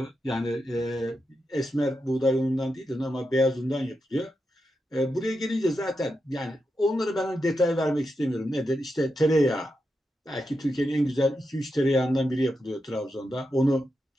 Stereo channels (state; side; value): normal; both; correlation 0.87